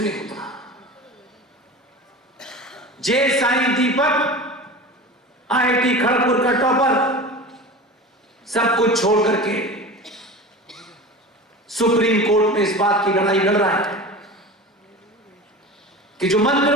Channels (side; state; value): both; normal; correlation 0.33